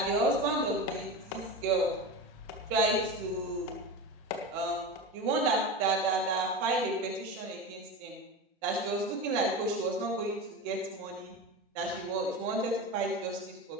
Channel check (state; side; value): normal; both; correlation 0.25